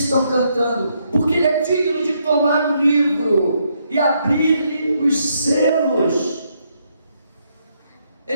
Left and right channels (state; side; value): inverted; both; correlation -0.75